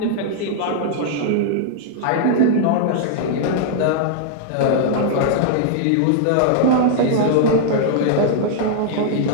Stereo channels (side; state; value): both; different; correlation -0.01